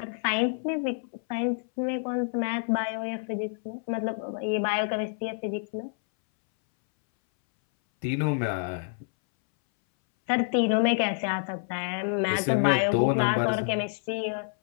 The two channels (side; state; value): right; silent; 60 dB below the other